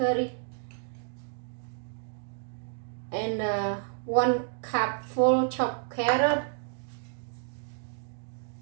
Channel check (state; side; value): silent; left; digital silence